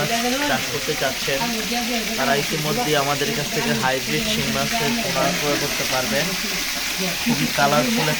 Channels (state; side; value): identical; both; correlation 1.00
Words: চাষ করতে চাচ্ছেন তারা ইতিমধ্যে আমাদের কাছ থেকে হাইব্রিড শিং মাছের পোনা ক্রয় করতে পারবেন। খুবই কালারফুল